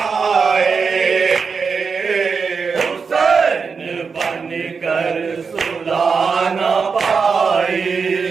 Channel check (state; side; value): quieter; left; 5.4 dB